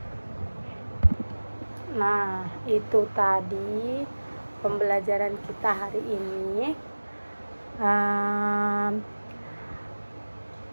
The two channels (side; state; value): both; inverted; correlation -1.00